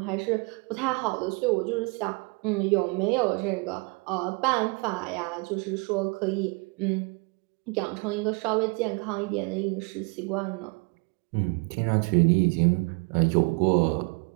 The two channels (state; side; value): quieter; left; 30.9 dB